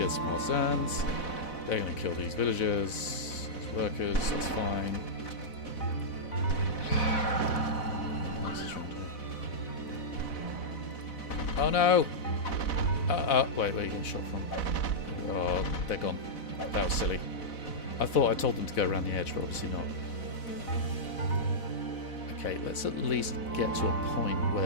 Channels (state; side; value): late; right; 4.1 ms